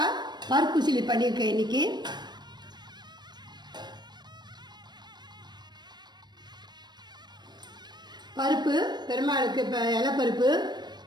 பருப்பு சிலி பண்ணியிருக்கேன் இன்றைக்கி. பருப்பு பெருமாளுக்கு இப்போ இலைப்பருப்பு,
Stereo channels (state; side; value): late; left; 0.21 ms